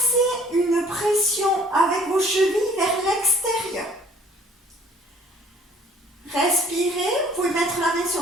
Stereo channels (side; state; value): both; normal; correlation 0.56